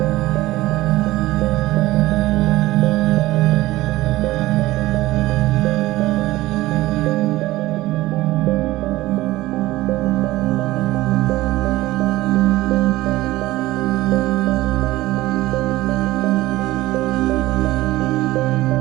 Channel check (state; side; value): quieter; left; 17.5 dB